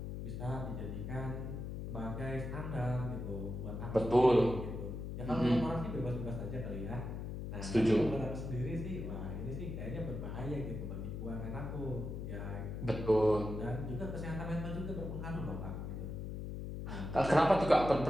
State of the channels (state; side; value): noise; left; hum, 6 dB below the sound